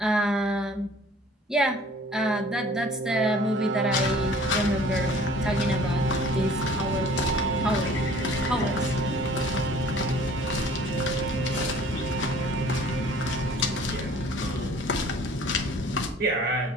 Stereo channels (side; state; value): both; normal; correlation 0.51